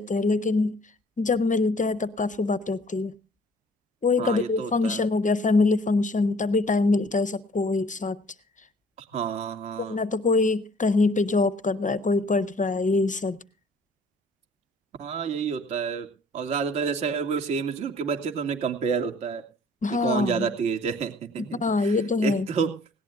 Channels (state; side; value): normal; both; correlation 0.55